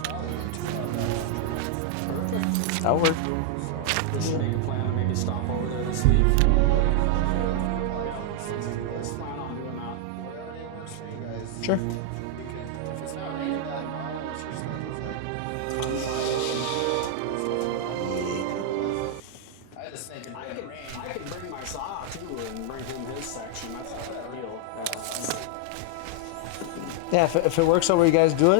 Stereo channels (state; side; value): different; both; correlation 0.00